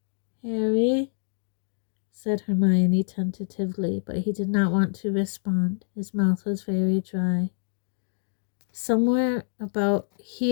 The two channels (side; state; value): right; silent; digital silence